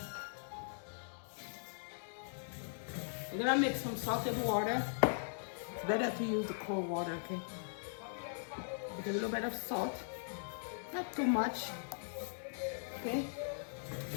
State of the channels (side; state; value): right; silent; digital silence